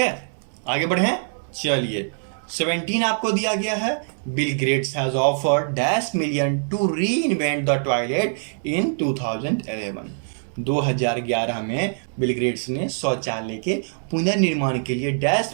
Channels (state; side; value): silent; left; digital silence